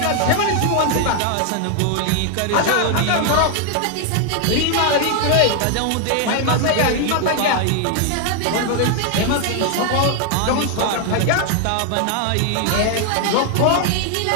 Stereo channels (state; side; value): different; both; correlation 0.00